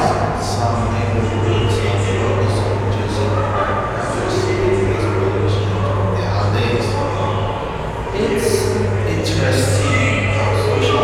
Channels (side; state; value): both; identical; correlation 1.00